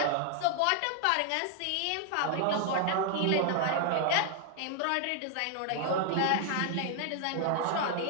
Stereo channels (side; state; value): both; different; correlation 0.00